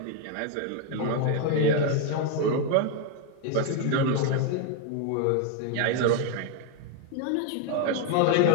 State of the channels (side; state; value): both; different; correlation 0.00